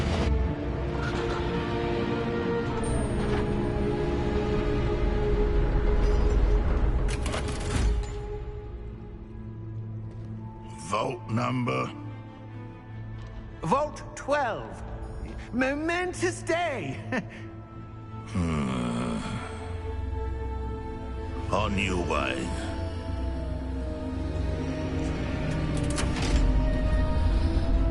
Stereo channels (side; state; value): both; identical; correlation 1.00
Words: Vault number? Vault 12. Momentous day. On your way.